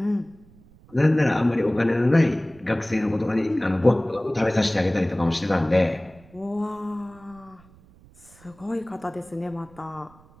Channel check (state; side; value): noise; right; rumble, 26 dB below the sound